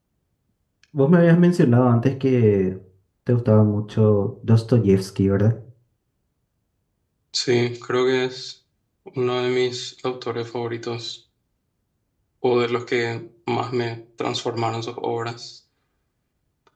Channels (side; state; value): both; identical; correlation 1.00